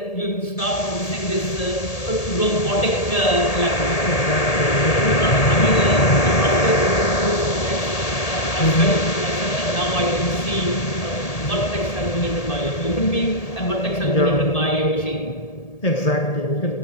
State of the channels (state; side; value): late; right; 1.8 ms